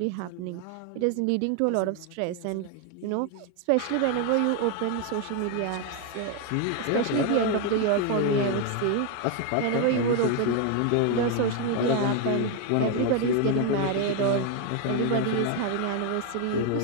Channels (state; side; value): different; both; correlation 0.01